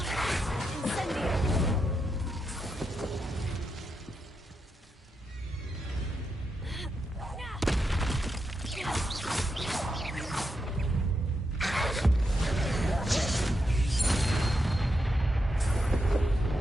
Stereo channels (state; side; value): normal; both; correlation 0.84